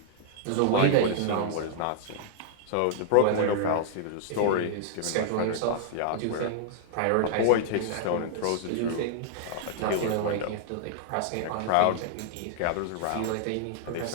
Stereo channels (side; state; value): both; different; correlation -0.01